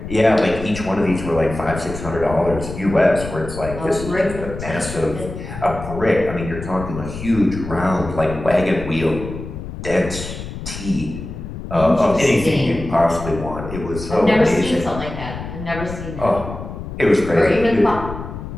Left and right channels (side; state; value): left; noise; rumble, 9 dB below the sound